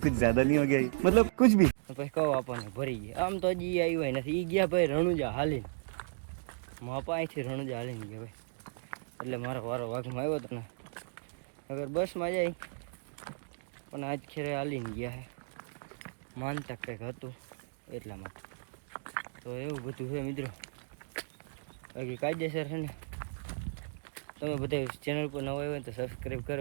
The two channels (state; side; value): silent; left; digital silence